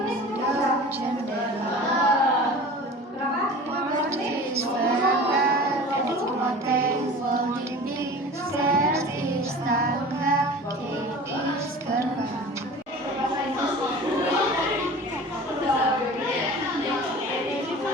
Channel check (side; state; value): both; normal; correlation 0.39